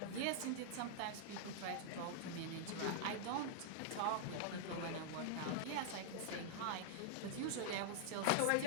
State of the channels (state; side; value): different; both; correlation -0.01